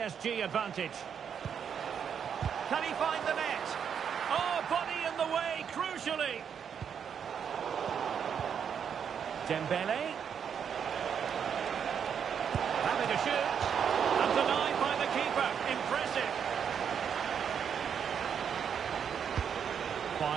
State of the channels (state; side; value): quieter; left; 7.7 dB